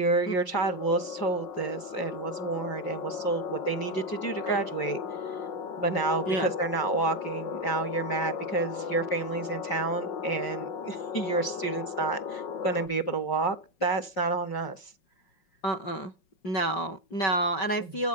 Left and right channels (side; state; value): right; late; 5.4 ms